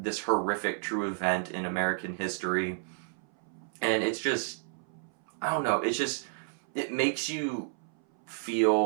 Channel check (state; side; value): silent; left; 57 dB below the other